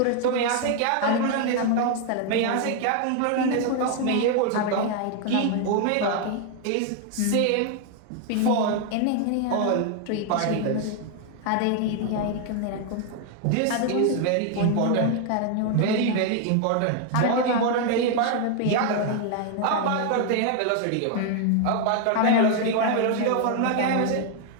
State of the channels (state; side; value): different; both; correlation 0.00